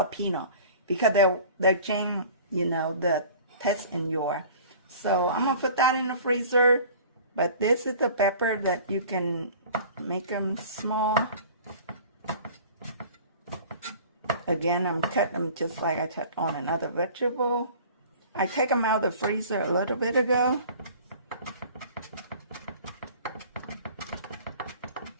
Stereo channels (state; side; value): inverted; both; correlation -0.45